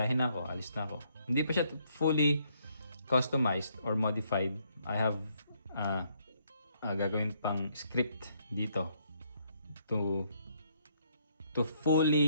na ako, alis na ako. Hindi pa siya fully customized or modified. I have gagawin pang script dito to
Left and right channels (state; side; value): inverted; both; correlation -0.71